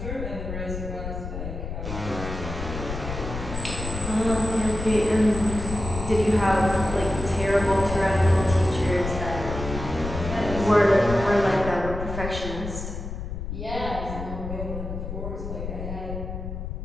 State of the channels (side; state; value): left; noise; rumble, 6 dB below the sound